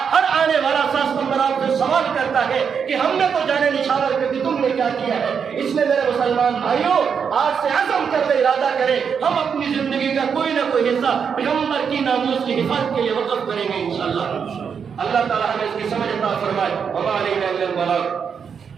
ہر آنے والا 7 ستمبر آپ سے سوال کرتا ہے کہ ہم نے تو جانے نشاور کر دی، تم نے کیا کیا ہے؟ اس لیے میرے مسلمان بھائیوں، آج سے عزم کر لے، ارادہ کریں، ہم اپنی زندگی کا کوئی نہ کوئی حصہ پیغمبر کی ناموس کی حفاظت کے لیے وقف کریں گے انشاءاللہ۔ اللہ تعالیٰ ہمیں اس کی سمجھ عطا فرمائے۔ وما علینا الا البلاغ۔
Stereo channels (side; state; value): left; quieter; 6.7 dB